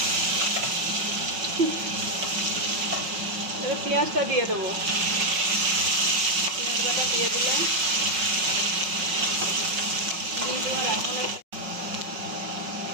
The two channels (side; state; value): left; late; 5.5 ms